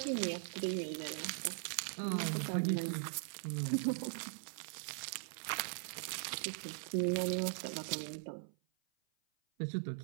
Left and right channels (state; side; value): silent; left; 51 dB below the other